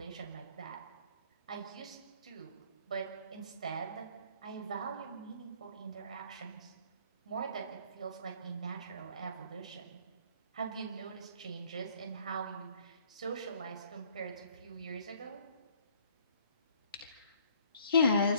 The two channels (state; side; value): inverted; both; correlation -0.60